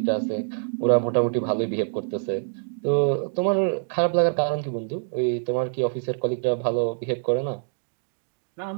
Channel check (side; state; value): left; silent; digital silence